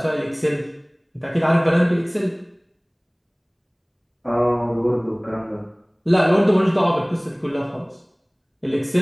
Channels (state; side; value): identical; both; correlation 1.00